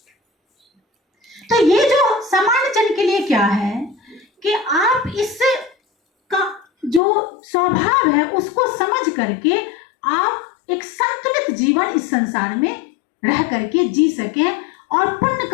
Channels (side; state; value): right; drops out; at 7.0 s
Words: तो ये जो सामान्य जन के लिए क्या है कि आप इस का जो स्वभाव है उसको समझ करके आप एक संतुलित जीवन इस संसार में रह करके जी सकें और पुण्य